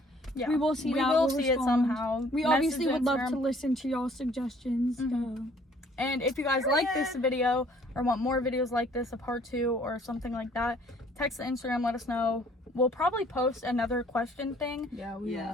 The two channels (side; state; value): both; normal; correlation 0.58